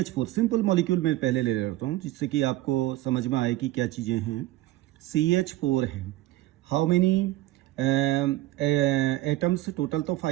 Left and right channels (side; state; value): left; quieter; 16.6 dB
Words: simple molecule में पहले ले लेता हूँ जिससे कि आपको समझ में आए कि क्या चीज़ें हैं। CH4 है, हाउ मेनी एटम्स, टोटल तो